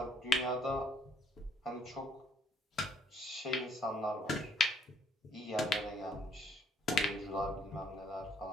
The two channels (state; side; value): normal; both; correlation 0.65